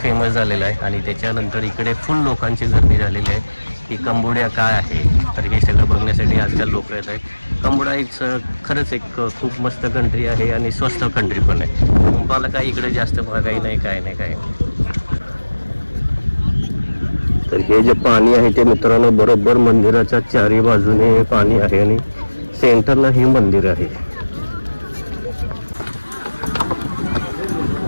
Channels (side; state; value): both; inverted; correlation -1.00